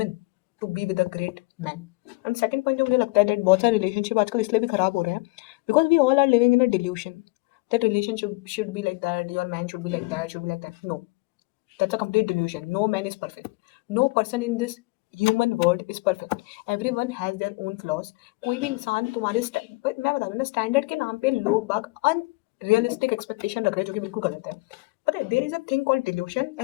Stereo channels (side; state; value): right; quieter; 24.7 dB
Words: to be with a great man. And second point जो मुझे लगता है दैट बहुत सारे रिलेशनशिप आजकल इसलिए भी खराब हो रहे हैं because we all are living in a delusion that relationship should be like that, your man should be like that, should be like that. No, that's a complete delusion. No man is perfect. No person in this human world is perfect. Everyone has their own flaws. कोई भी इंसान तुम्हारे but मैं बता दूं ना, standard के नाम पे लोग बाग अनरियलिस्टिक एक्सपेक्टेशन रख रहे हैं जो कि बिल्कुल गलत है। पता है, there is a thing called delusion